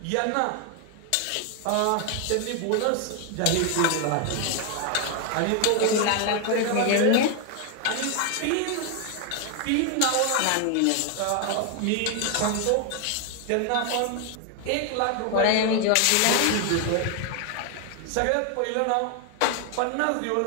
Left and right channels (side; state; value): both; different; correlation 0.01